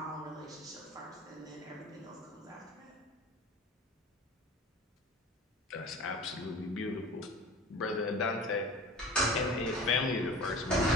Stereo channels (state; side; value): normal; both; correlation 0.39